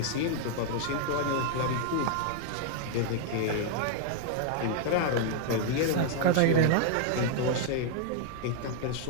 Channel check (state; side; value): different; both; correlation 0.00